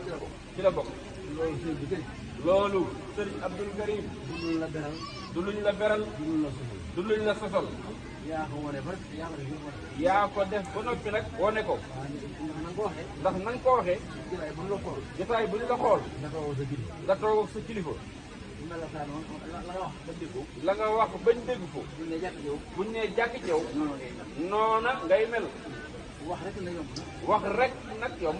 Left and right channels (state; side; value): identical; both; correlation 1.00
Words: ci la bokk loolu sëriñ Abdul Karim du luñ la beral du luñ la sosol yaa ko def ba noppi nag wane ko ndax na nga ko waxee jotaay bu ñu la xool nga toog ak sa kilifa la nga wax bañ dégg ko buñ nee jàkk ci yow noona ngay mel wax rek nag yomb